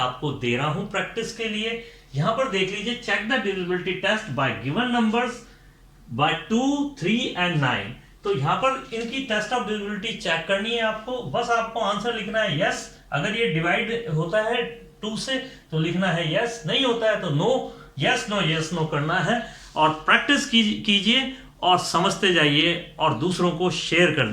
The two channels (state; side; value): identical; both; correlation 1.00